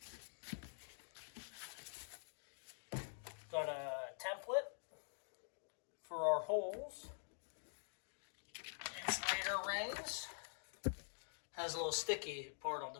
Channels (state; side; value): silent; right; digital silence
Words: Got a template for our holes. Insulator rings. Has a little sticky part on